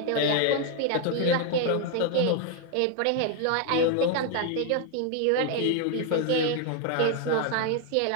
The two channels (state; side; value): different; both; correlation 0.01